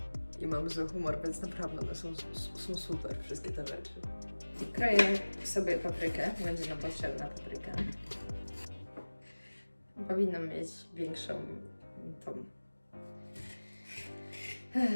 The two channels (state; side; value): inverted; both; correlation -1.00